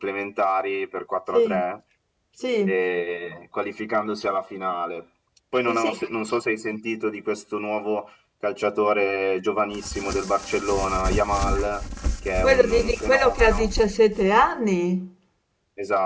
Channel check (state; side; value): identical; both; correlation 1.00